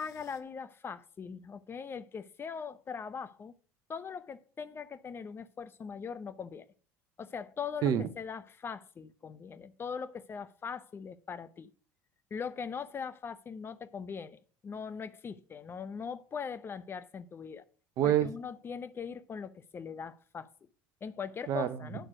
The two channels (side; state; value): both; normal; correlation 0.45